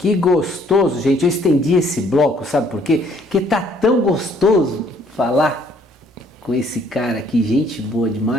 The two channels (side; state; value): both; normal; correlation 0.63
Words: gostoso, gente. Eu estendi esse bloco, sabe por quê? Porque tá tão gostoso falar com esse cara aqui, gente boa